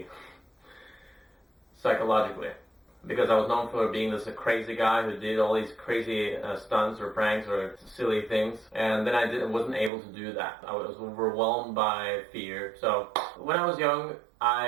because I was known for being this crazy guy who did all these crazy stunts or pranks or silly things, and then I wasn't able to do that. I was overwhelmed by fear. So when I was young,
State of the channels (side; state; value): left; drops out; at 9.9 s